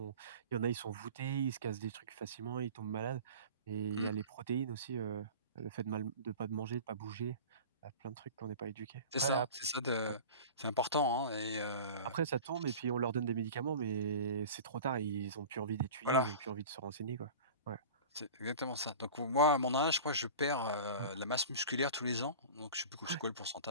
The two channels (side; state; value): both; inverted; correlation -0.36